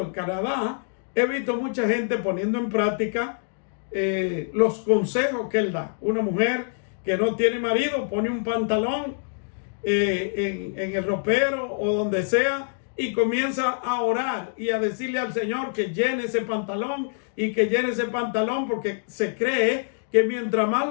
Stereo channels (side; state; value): right; silent; digital silence